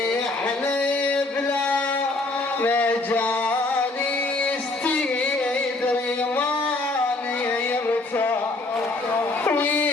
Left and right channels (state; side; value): quieter; right; 3.0 dB